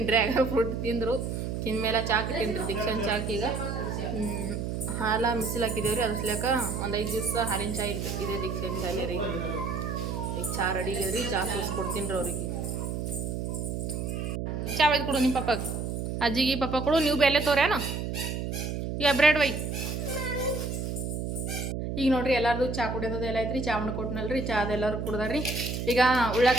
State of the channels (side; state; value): right; noise; hum, 3 dB below the sound